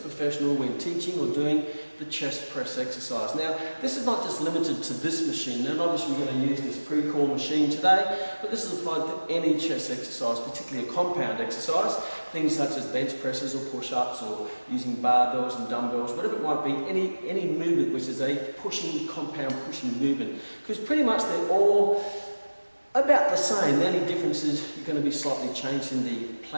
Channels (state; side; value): inverted; both; correlation -1.00